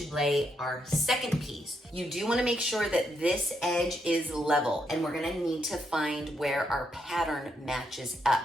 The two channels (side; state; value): both; normal; correlation 0.79